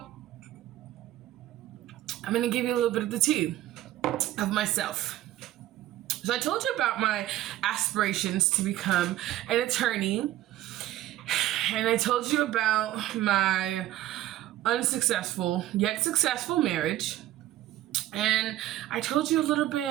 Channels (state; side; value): quieter; left; 14.4 dB